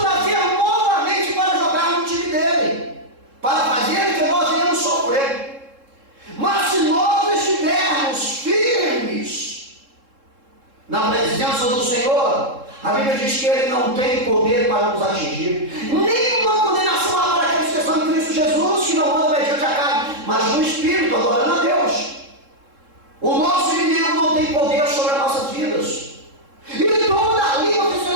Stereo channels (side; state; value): left; late; 3.7 ms